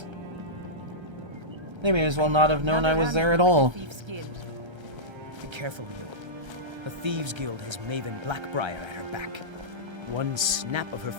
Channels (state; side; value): late; left; 1.3 ms